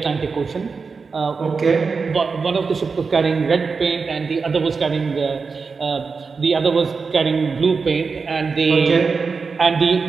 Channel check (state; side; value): quieter; left; 4.9 dB